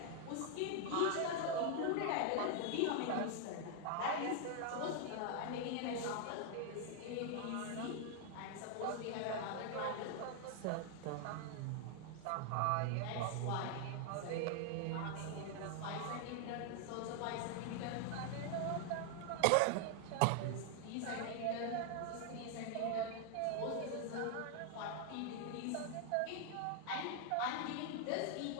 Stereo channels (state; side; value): different; both; correlation 0.00